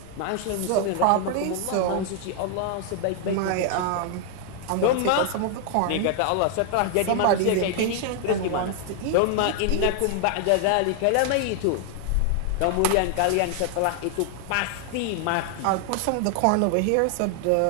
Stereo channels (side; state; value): both; different; correlation 0.00